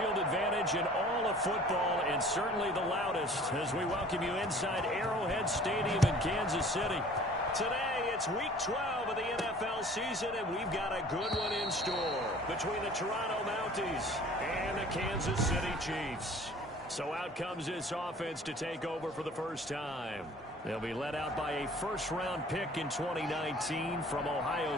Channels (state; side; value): normal; both; correlation 0.49